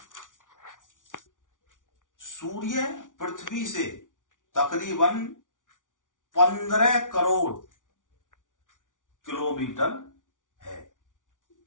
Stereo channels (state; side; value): late; right; 0.87 ms